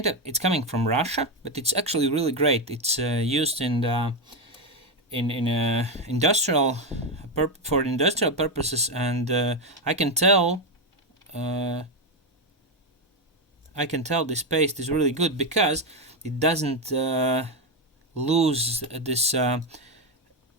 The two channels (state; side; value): normal; both; correlation 0.09